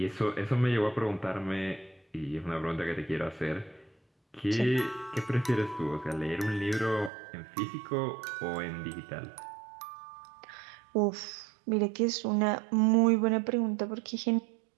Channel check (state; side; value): drops out; left; at 7.1 s